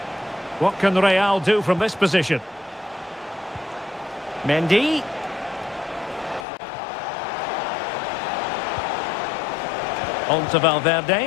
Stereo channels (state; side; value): drops out; right; at 6.5 s